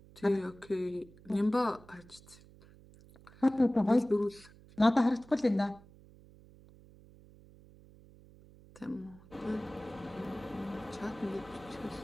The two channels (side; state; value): right; noise; hum, 23 dB below the sound